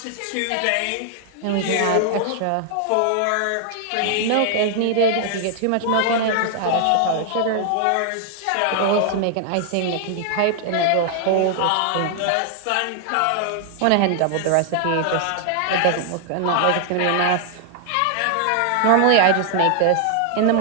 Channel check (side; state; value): both; different; correlation 0.00